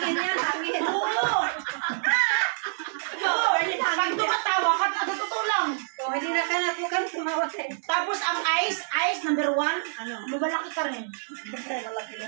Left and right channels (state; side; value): silent; left; digital silence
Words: yan, hangin. Oo! Pag tumatawa ka, totoo lang. O, hindi na ka natukan, tumawa tayo. Tapos ang eyes, number 1, lumalaki ka rin. Malaki na